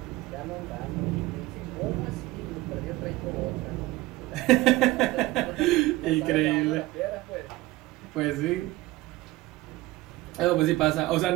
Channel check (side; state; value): left; quieter; 18.8 dB